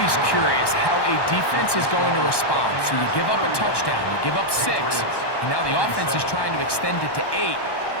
curious how a defense is going to respond. So you give up a touchdown, you give up 6, and now the offense is trying to extend it to 8.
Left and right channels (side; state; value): right; late; 1.1 ms